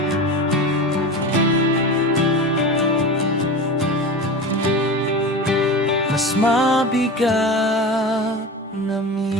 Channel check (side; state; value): both; normal; correlation 0.28